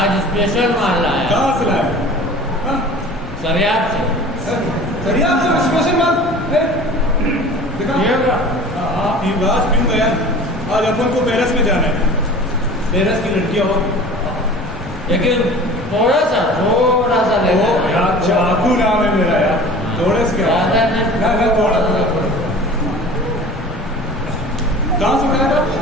स्पेशल माल लाया। कहाँ से लाया? हाँ, सरियाब से। सरियाब से स्पेशल माल? देखा? हाँ, आज पीऊँ गया। आज अपन को पेरिस में जाना है। पेरिस की लड़कियाँ और लेकिन थोड़ा सा ले यार, चाकू नाम है मेरा यार। थोड़े से क्या? ज़्यादा नहीं। ना थोड़ा थोड़ा। कहाँ से खाया था?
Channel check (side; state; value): both; normal; correlation 0.41